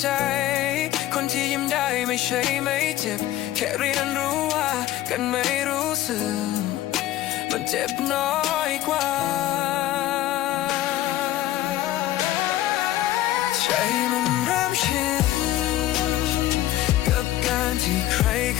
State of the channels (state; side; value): quieter; right; 14.4 dB